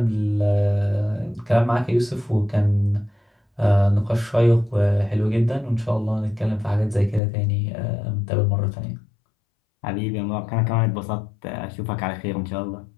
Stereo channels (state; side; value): drops out; right; at 7.2 s